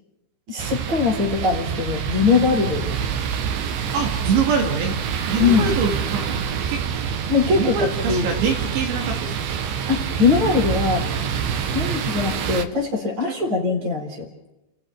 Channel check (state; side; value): late; left; 15 ms